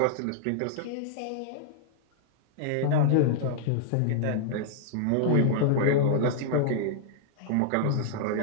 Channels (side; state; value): both; different; correlation -0.01